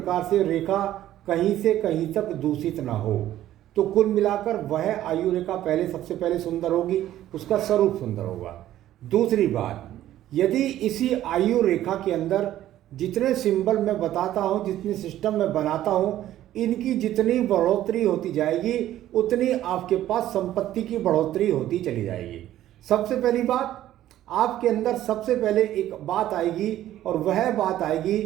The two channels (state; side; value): quieter; left; 13.1 dB